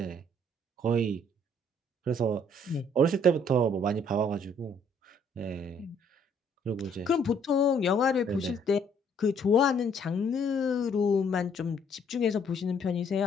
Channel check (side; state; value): both; normal; correlation 0.64